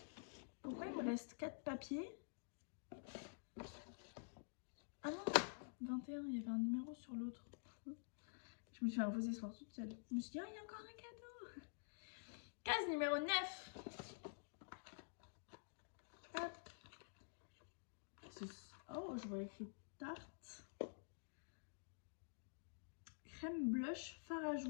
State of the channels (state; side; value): silent; right; digital silence